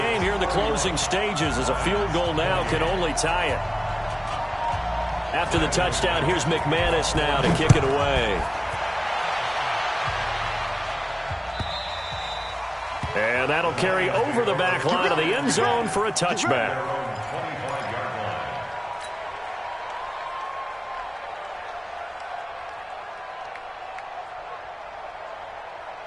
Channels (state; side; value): identical; both; correlation 1.00